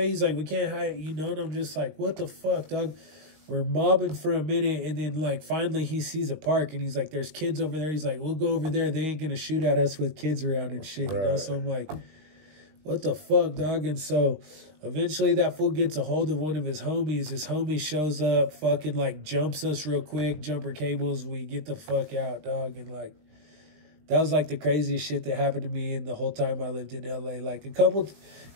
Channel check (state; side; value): late; left; 19 ms